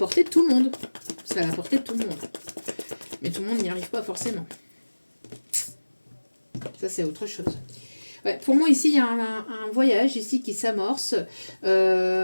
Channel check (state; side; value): inverted; both; correlation -1.00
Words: de tout le monde. C'est à la portée de tout le monde. Mais tout le monde n'y arrive pas forcément. Ça, c'est autre chose. Ouais, pour moi, ici, il y a un voyage ici qui s'amorce.